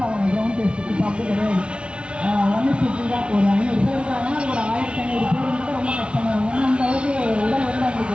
ஆவாங்க கிரவுண்ட் டெஸ்ட். இப்போ அப்படி கிடையாது. 1:50 தான். ஒரு 500 பேர் இருக்காங்கன்னா அது ஒரு 1500 பேர் வந்து ரொம்ப கஷ்டமாக இருக்கும். ஏன்னா அந்த அளவுக்கு உடல் வந்து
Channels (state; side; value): late; left; 0.058 ms